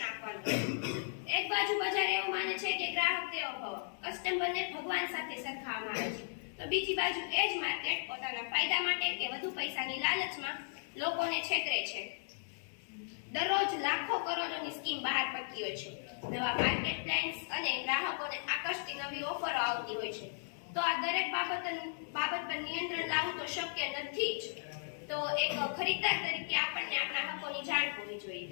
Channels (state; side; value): silent; right; 54 dB below the other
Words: આપવાનું. એક બાજુ બજાર એવું માને છે કે ગ્રાહક દેવો ભવ, કસ્ટમરને ભગવાન સાથે સરખાવવામાં આવે છે, તો બીજી બાજુ એ જ માર્કેટ પોતાના ફાયદા માટે કે વધુ પૈસાની લાલચમાં લોકોને છેતરે છે. દરરોજ લાખો કરોડોની સ્કીમ બહાર પડતી હોય છે. નવા માર્કેટ પ્લાન્સ અને ગ્રાહકોને આકર્ષતી નવી ઓફરો આવતી હોય છે. તો આ દરેક બાબત પર નિયંત્રણ લાવવું તો શક્ય નથી જ. તો એક ખરીદદાર તરીકે આપણને આપણા હકોની જાણ હોવી